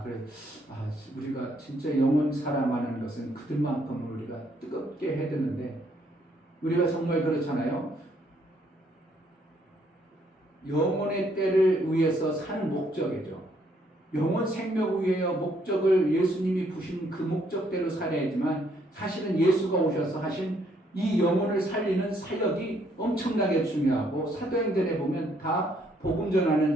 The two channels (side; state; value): both; normal; correlation 0.69